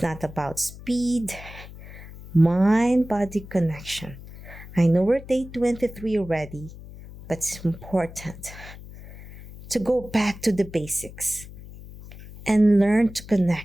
not about speed. Mind-body connection. I know we're day 23 already, but it's important to go back to the basics and learn to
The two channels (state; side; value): noise; left; hum, 16 dB below the sound